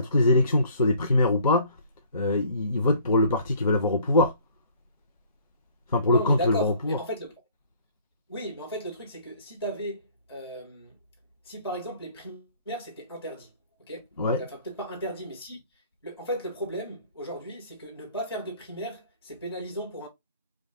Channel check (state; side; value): inverted; both; correlation -0.55